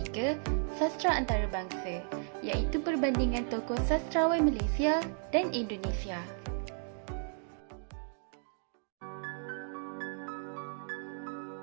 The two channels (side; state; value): left; silent; 55 dB below the other